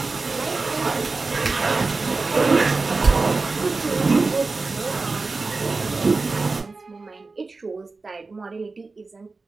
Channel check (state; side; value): quieter; left; 3.9 dB